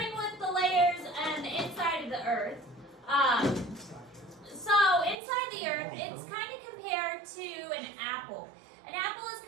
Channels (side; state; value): left; drops out; at 5.2 s